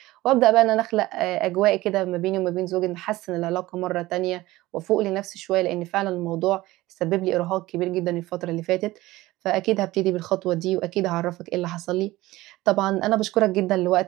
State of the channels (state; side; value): quieter; left; 18.1 dB